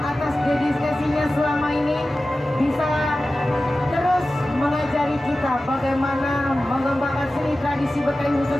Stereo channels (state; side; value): normal; both; correlation 0.95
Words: atas dedikasinya selama ini bisa terus mengajari kita bagaimana mengembangkan seni tradisi Betawi,